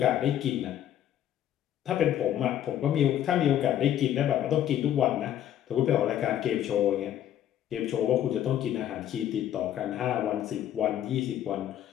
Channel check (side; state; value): right; quieter; 11.1 dB